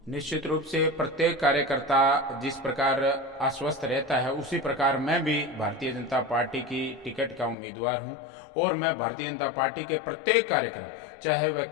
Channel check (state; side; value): drops out; right; at 7.6 s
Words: निश्चित रूप से प्रत्येक कार्यकर्ता जिस प्रकार आश्वस्त रहता है उसी प्रकार मैं भी भारतीय जनता पार्टी की टिकट का उम्मीदवार हूं और मैं भारतीय जनता पार्टी के प्रत्येक कार्यक्रम, चाहे वह